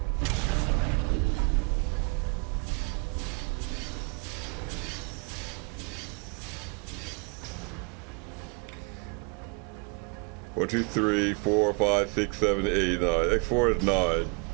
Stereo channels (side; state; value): left; quieter; 33.9 dB